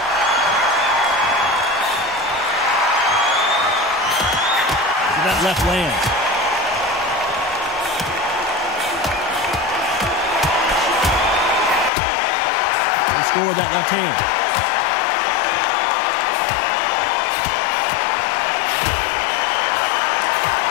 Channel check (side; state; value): right; drops out; at 11.9 s